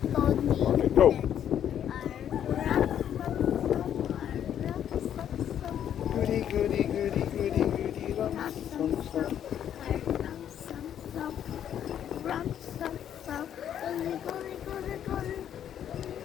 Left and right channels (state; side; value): quieter; right; 9.8 dB